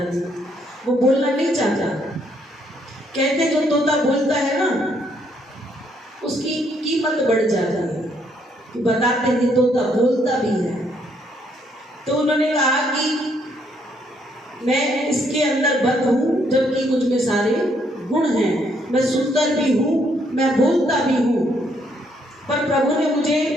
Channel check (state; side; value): normal; both; correlation 0.71